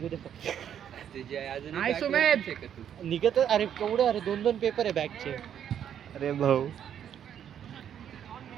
दे फक्त. निघत अरे केवढं. अरे 2 पेपर आहे बॅकचे. अरे भाऊ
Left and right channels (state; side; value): quieter; left; 9.3 dB